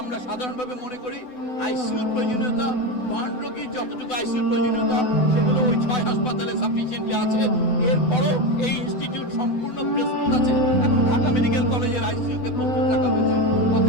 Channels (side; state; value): right; late; 8.0 ms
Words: আমরা সাধারণভাবে মনে করি আইসিইউর প্রয়োজনীয়তা, বার্ন রোগীর যতটুকু আইসিইউর প্রয়োজনীয়তা সেগুলো ওই 6 হাসপাতালে সাফিসিয়েন্টলি আছে। এরপরও এই ইনস্টিটিউট সম্পূর্ণ প্রস্তুত আছে এবং ঢাকা মেডিকেল কলেজের আইসিইউকে প্রস্তুত রাখা হয়েছে।